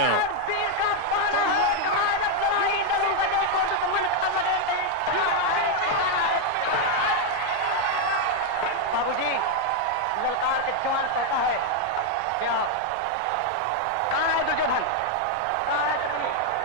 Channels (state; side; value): different; both; correlation 0.01